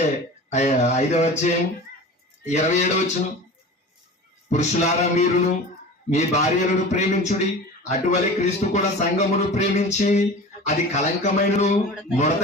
5వ అధ్యాయం 27 పురుషులారా మీరును మీ భార్యలను ప్రేమించుడి, అటువలే క్రీస్తు కూడా సంఘమును ప్రేమించి అది కలంకమైనను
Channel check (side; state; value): both; normal; correlation 0.36